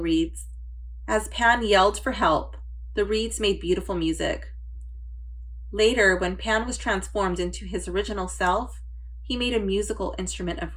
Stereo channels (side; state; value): both; identical; correlation 1.00